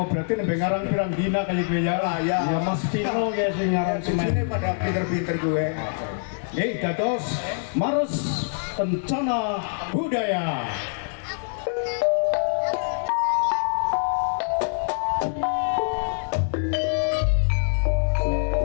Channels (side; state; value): right; silent; digital silence